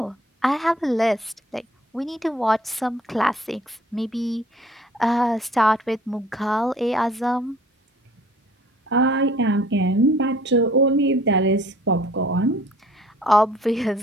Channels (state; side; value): normal; both; correlation 0.54